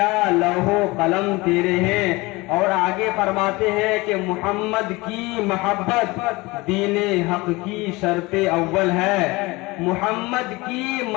لوح و قلم تیرے ہیں۔ اور آگے فرماتے ہیں کہ محمد کی محبت دین حق کی شرط اول ہے، محمد کی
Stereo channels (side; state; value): right; quieter; 22.8 dB